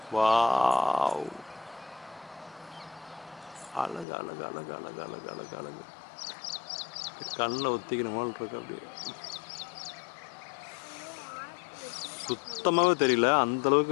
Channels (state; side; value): drops out; right; at 4.0 s